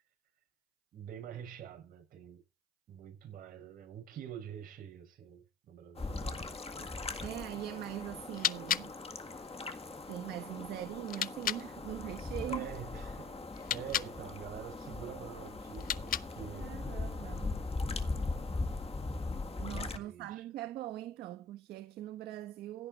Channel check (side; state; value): both; normal; correlation 0.48